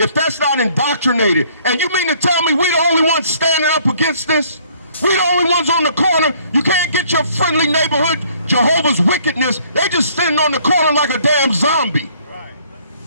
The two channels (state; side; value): inverted; both; correlation -0.61